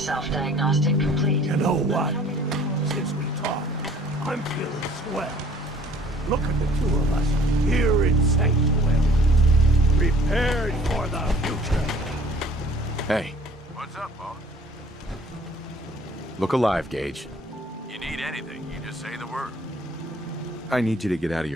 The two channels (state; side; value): normal; both; correlation 0.54